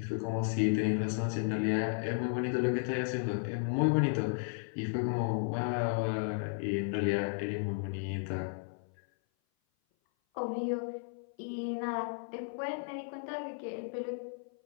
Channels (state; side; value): silent; right; 55 dB below the other